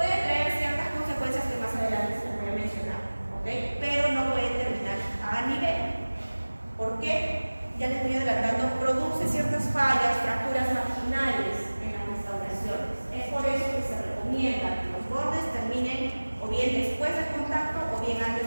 traer ciertas consecuencias que más adelante se les voy a mencionar. ¿Okay? Pero no pueden terminar a nivel. ¿Por qué? Ya les voy adelantando, produce ciertas fallas, fracturas marginales en las restauraciones. Es por eso que se recomienda que los bordes terminen o bien después del contacto o bien antes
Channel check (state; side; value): inverted; both; correlation -1.00